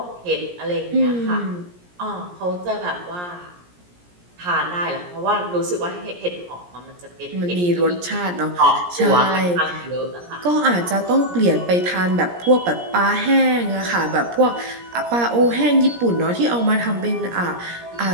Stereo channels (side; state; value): left; late; 17 ms